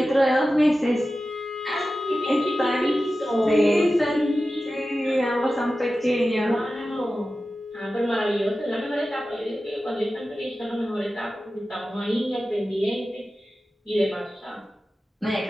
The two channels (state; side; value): normal; both; correlation 0.94